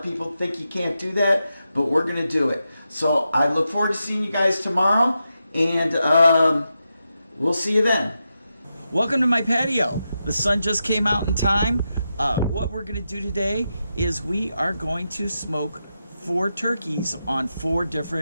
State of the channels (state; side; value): inverted; both; correlation -0.88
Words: people think you can't do that, but we're going to do it. So I look forward to seeing you guys tomorrow, and we'll see you then. Welcome to my patio. The sun just came out in time. What we're going to do today is we are going to smoke 4 turkeys on 4